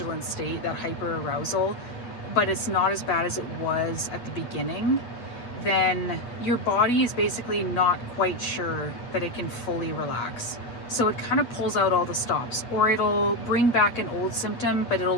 state, that hyperarousal, but it's not as bad as it was at the beginning, then your body is basically not quite sure that it can fully relax. So it kind of pulls out all the stops, or it'll bring back an old symptom, but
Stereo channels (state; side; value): late; right; 8.5 ms